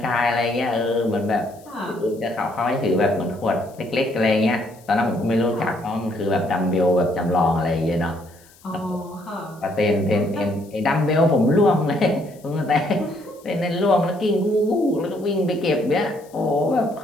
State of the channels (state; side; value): noise; left; hiss, 27 dB below the sound